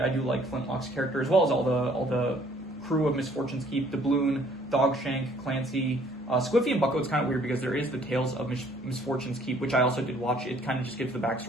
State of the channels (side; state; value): both; normal; correlation 0.60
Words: do like Flintlock's character, as well as all the crew of Misfortune's Keep, Doubloon, Dogshank, Clancy, Squiffy and Bucko. It's kind of weird because there is the Tales of Misfortune's Keep, which I also did watch. It kind of just gives the